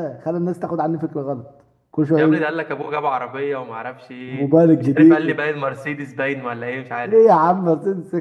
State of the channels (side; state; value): both; identical; correlation 1.00